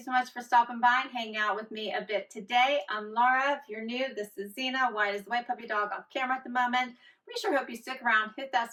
so much for stopping by and hanging out with me a bit today. I'm Laura. If you're new, this is Zena. White is the white puppy dog off camera at the moment. We sure hope you stick around, hit that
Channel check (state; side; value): identical; both; correlation 1.00